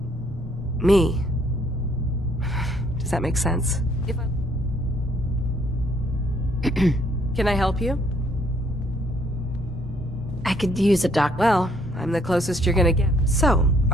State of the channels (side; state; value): both; normal; correlation 0.67